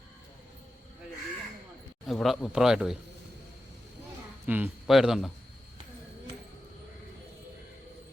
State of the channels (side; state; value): both; normal; correlation 0.91